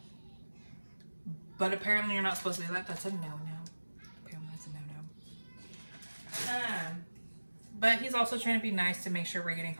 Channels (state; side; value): inverted; both; correlation -1.00